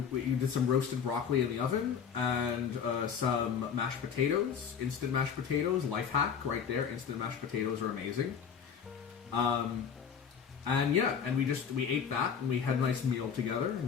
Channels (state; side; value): quieter; right; 7.2 dB